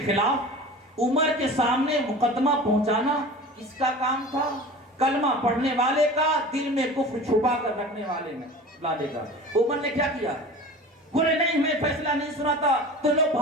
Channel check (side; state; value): both; normal; correlation 0.37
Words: خلاف عمر کے سامنے مقدمہ پہنچانا اس کا کام تھا. کلمہ پڑھنے والے کا, دل میں کفر چھپا کر رکھنے والے میں لانے کا. عمر نے کیا کیا؟ بولے نہیں میں فیصلہ نہیں سناتا, تو لوگ